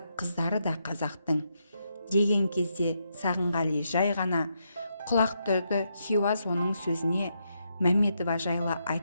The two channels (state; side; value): inverted; both; correlation -0.81